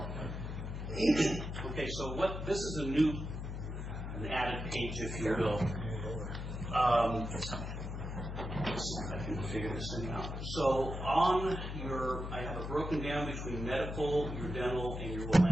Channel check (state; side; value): noise; left; hum, 5 dB below the sound